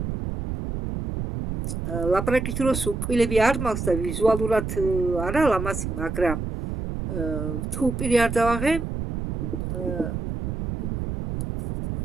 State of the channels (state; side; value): noise; right; rumble, 4 dB below the sound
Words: ლაპარაკის დროს უკვილები არ მაქვს და ვიზუალურად არა ლამაზი, მაგრამ თუ პირი არ დავაღე,